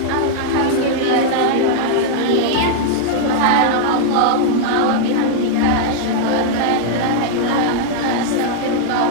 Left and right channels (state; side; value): different; both; correlation -0.01